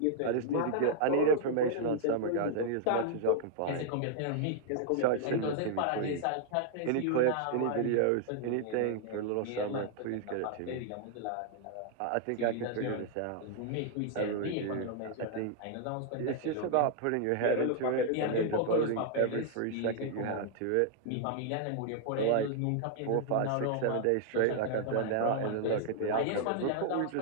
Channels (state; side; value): different; both; correlation -0.01